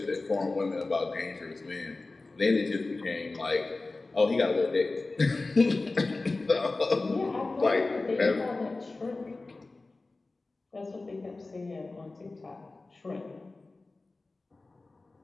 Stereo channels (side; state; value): right; quieter; 3.4 dB